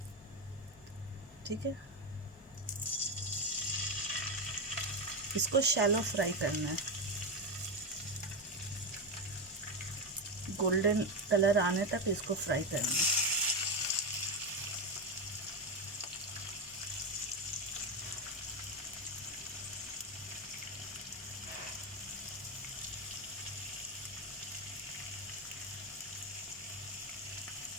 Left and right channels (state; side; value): normal; both; correlation 0.11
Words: ठीक है, इसको शैलो फ्राई करना है, गोल्डन कलर आने तक इसको फ्राई करना है।